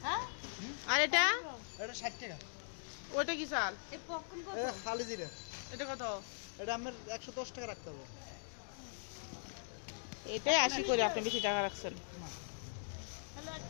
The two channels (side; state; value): right; silent; digital silence